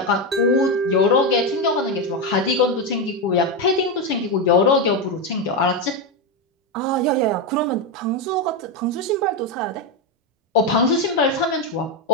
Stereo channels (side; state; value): both; normal; correlation 0.09